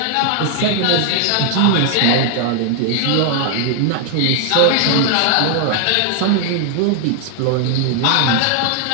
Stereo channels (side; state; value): both; different; correlation 0.00